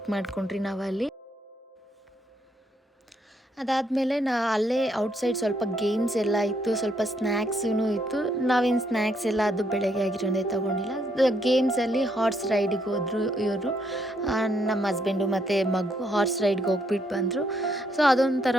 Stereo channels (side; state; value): both; normal; correlation 0.73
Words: ಮಾಡ್ಕೊಂಡ್ರಿ ನಾವಲ್ಲಿ. ಅದಾದಮೇಲೆ ಅಲ್ಲೇ ಔಟ್ಸೈಡ್ ಸ್ವಲ್ಪ ಗೇಮ್ಸ್ ಎಲ್ಲ ಇತ್ತು, ಸ್ವಲ್ಪ ಸ್ನ್ಯಾಕ್ಸೂ ಇತ್ತು. ನಾವೇನು ಸ್ನ್ಯಾಕ್ಸ್ ಎಲ್ಲ ಅದು ಬೆಳಗ್ಗೆ ಆಗಿರೋದೇ ತೊಗೊಂಡಿಲ್ಲ. ಗೇಮ್ಸಲ್ಲಿ ಹಾರ್ಸ್ ರೈಡಿಗೆ ಹೋದರು ಇವರು, ನಮ್ಮ ಹಸ್ಬೆಂಡು ಮತ್ತು ಮಗು ಹಾರ್ಸ್ ರೈಡ್ಗೆ ಹೋಗ್ಬಿಟ್ಟು ಬಂದರು. ಸೊ